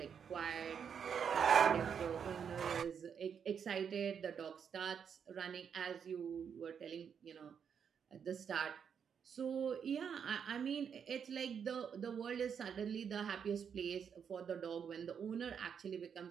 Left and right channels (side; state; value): left; quieter; 7.3 dB